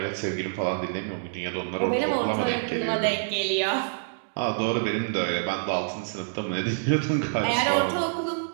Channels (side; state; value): left; silent; digital silence